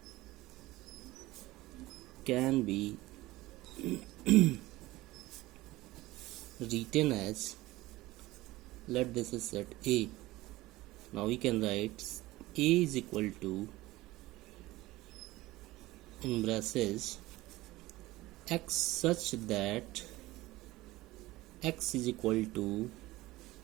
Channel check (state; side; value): quieter; left; 18.5 dB